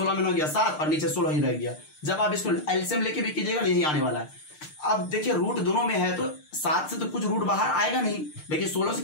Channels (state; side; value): late; right; 6.6 ms